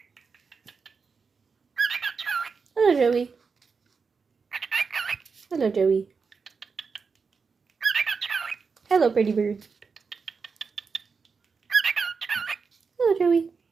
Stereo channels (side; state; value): left; quieter; 5.2 dB